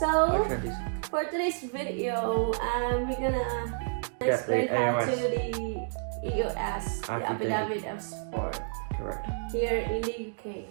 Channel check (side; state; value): left; silent; digital silence